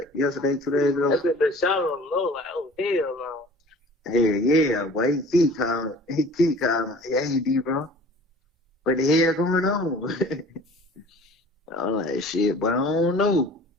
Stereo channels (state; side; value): normal; both; correlation 0.46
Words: ago. I said the shot on the low, like, oh hell no. Yeah, boy, he keep calling. Hey, D, bro. What the hell going on? I'm like, shit, but I don't know.